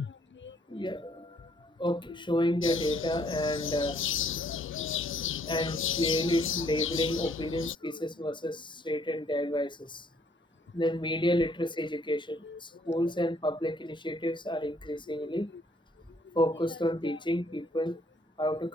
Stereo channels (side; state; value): both; normal; correlation 0.65